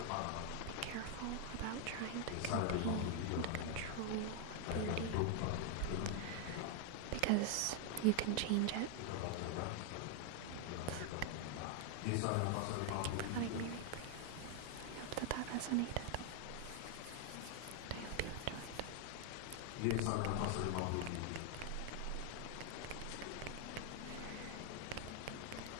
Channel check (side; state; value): both; different; correlation 0.00